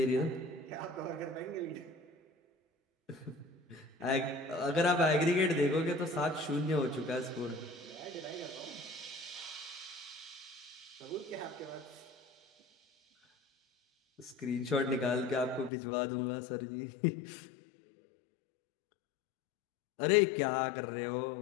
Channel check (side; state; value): right; drops out; at 15.7 s